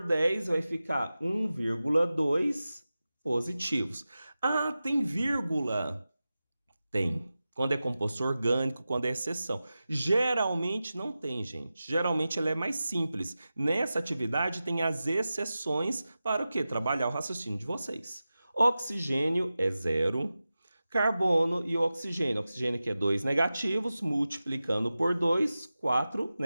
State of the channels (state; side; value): inverted; both; correlation -0.94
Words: 10, vai ficar 1,2 positivos. Ah, tem vírgula? Tem. Quando é composto orgânico, quando é exceção. Geralmente não tem, gente. Geralmente ela é mais simples. Nessa atividade tem as exceções para o quê? Trabalhar o raciocínio de vocês. Oxigênio é 0. Carbono e oxigênio. Oxigênio que é 2 negativos, multiplicando por 2, 4